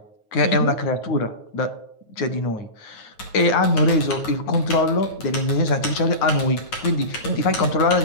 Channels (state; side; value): late; right; 9.3 ms